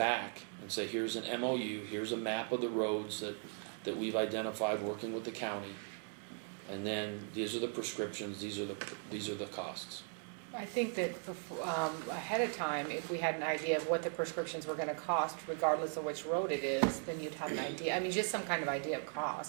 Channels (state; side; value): silent; left; 52 dB below the other